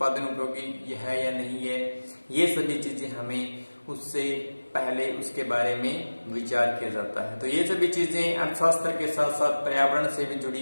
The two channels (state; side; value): inverted; both; correlation -1.00